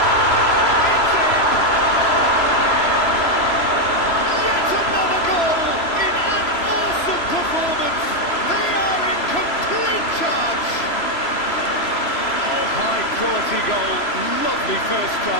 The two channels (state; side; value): late; right; 3.0 ms